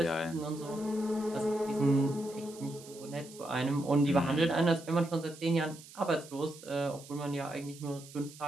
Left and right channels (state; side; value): noise; right; hiss, 18 dB below the sound